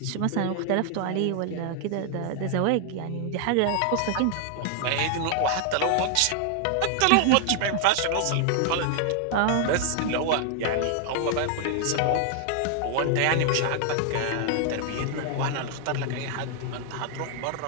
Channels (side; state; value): both; different; correlation 0.00